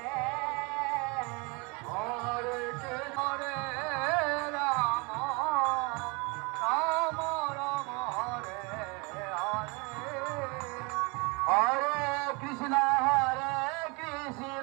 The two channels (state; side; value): quieter; left; 29.2 dB